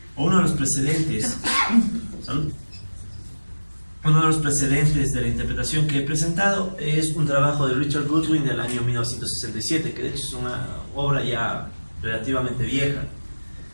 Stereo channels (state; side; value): inverted; both; correlation -1.00